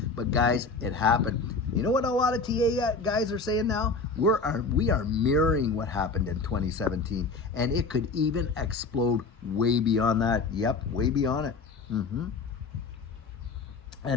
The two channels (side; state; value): right; quieter; 4.1 dB